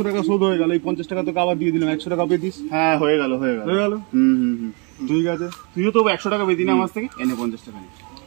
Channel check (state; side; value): quieter; left; 33.3 dB